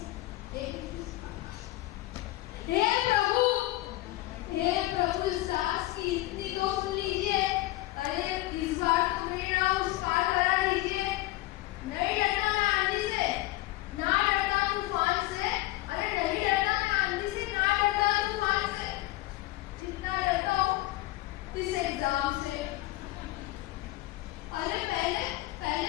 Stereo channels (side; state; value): right; quieter; 18.0 dB